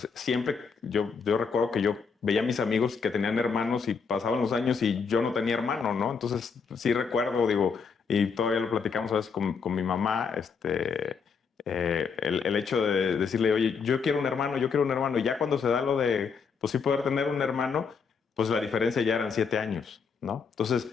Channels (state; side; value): quieter; right; 5.6 dB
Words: siempre yo recuerdo que yo veía a mis amigos que tenían hermanos y pasaban los años y yo no tenía hermano, ¿no? Entonces sí recuerdo, digo, y todavía lo platicamos a veces con mi mamá, el hecho de decirle, oye, yo quiero un hermano, y ya cuando se da lo de, pues sí poder tener un hermano, pues la diferencia ya eran 7 años, ¿no?